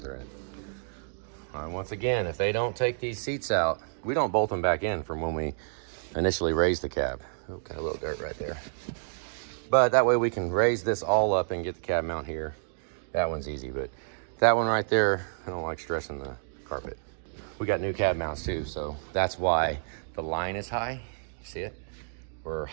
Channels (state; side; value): silent; left; digital silence